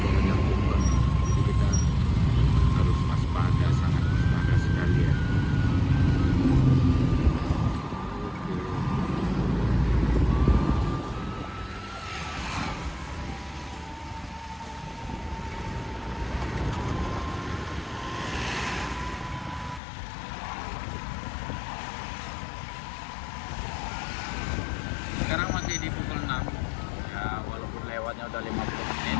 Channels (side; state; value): right; drops out; at 19.8 s